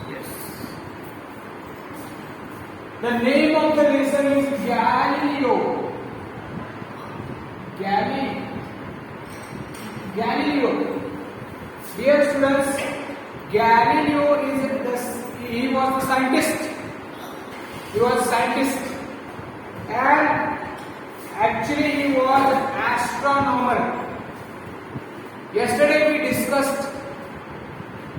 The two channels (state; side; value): identical; both; correlation 1.00